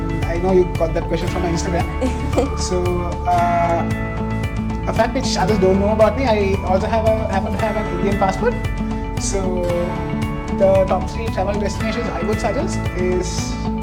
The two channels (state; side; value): identical; both; correlation 1.00